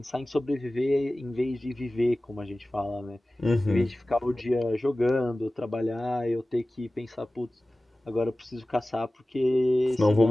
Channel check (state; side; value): normal; both; correlation 0.97